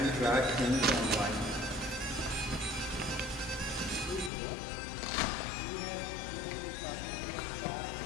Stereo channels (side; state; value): right; drops out; at 4.3 s